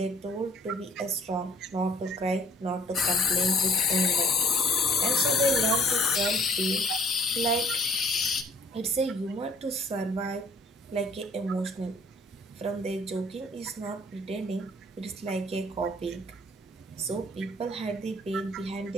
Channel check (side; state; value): both; normal; correlation 0.58